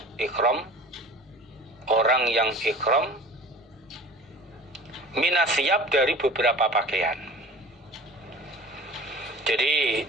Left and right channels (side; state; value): both; normal; correlation 0.40